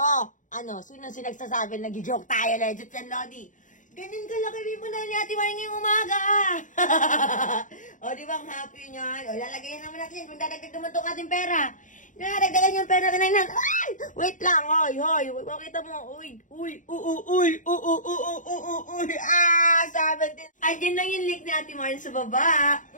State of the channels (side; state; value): right; late; 0.37 ms